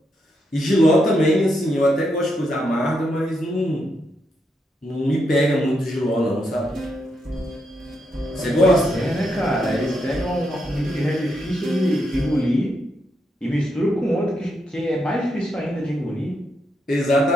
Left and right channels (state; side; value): normal; both; correlation 0.81